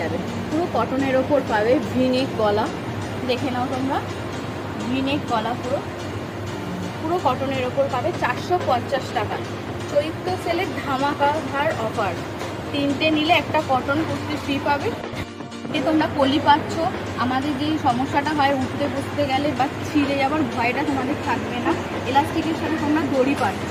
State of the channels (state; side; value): identical; both; correlation 1.00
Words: পুরো কটনের ওপর পাবে, ভিনেক গলা, দেখে নাও তোমরা, ভিনেক গলা পুরো কটনের ওপর পাবে 450 টাকা। চৈত্র সেলের ধামাকা ধার অফার, 3টে নিলে একটা কটন কুর্তি ফ্রি পাবে। তোমরা কলি পাচ্ছ, আমাদের যেই সমস্যাটা হয় উঠতে বসতে গেলে বা ছিঁড়ে যাওয়ার ভয়টা তোমাদের থাকবে না। এলাস্টিকের সাথে তোমরা দড়ি পাচ্ছ।